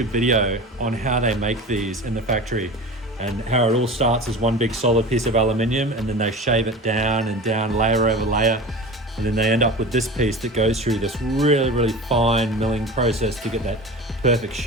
video on how they make these in the factory and how it all starts as one big solid piece of aluminium, and then they shave it down and down, layer over layer. And then they end up with this piece that goes through this really, really fine milling process to get that perfect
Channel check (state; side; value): normal; both; correlation 0.33